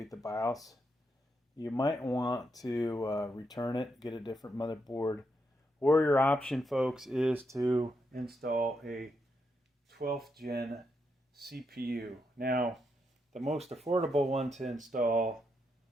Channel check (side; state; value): both; normal; correlation 0.81